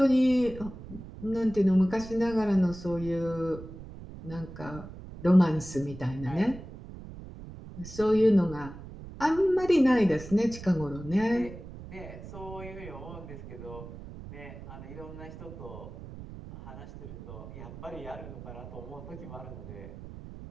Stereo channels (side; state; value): right; noise; rumble, 13 dB below the sound